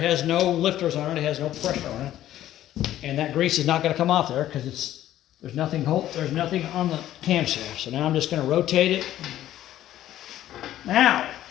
has no lifters on it. It has no pressure on it. And that grease is not going to come off there because there's nothing on the camshaft. So now I'm just going to rotate it. Now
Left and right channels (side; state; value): right; quieter; 12.9 dB